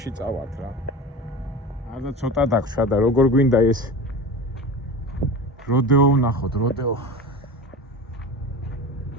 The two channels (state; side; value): normal; both; correlation 0.30